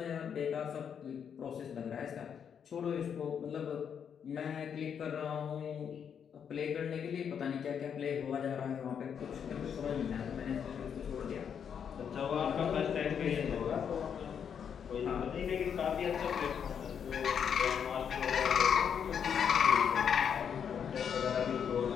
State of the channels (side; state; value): right; quieter; 7.7 dB